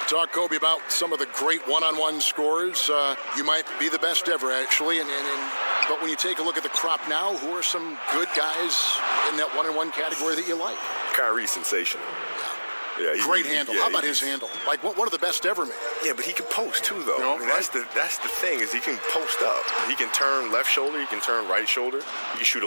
Talk, Kobe, about some of the great one-on-one scores. You might be the best ever, actually, but when you take a look at the crop now, who are some good guys in that one-on-one category that you like? Kyrie's sensational. Yeah, great handle. How about his handle? Like one of the best ever made. Yeah, but he can post too, though. That's the thing, is he can post up. He can turn left shoulder. He can turn right shoulder. He can shoot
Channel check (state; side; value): inverted; both; correlation -1.00